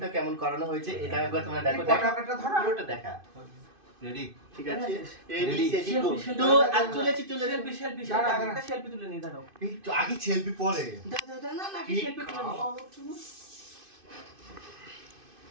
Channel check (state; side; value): late; left; 2.5 ms